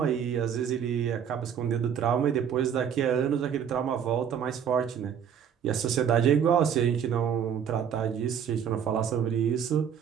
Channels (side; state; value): left; quieter; 8.3 dB